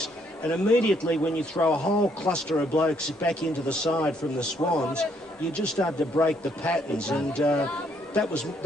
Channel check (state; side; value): normal; both; correlation 0.70